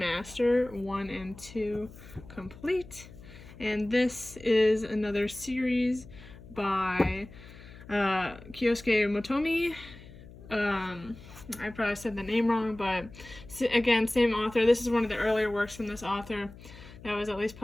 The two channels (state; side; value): noise; left; hum, 18 dB below the sound